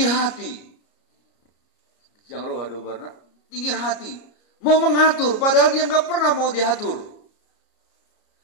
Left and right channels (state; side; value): late; right; 33 ms